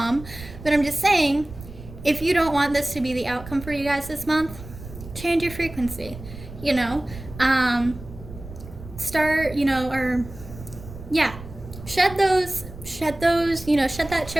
but I'm just saying, if you don't want this to be the outcome for you guys this month, change your frequency, you know? Start, you know, or yeah, shed those, shed that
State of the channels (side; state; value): right; noise; rumble, 14 dB below the sound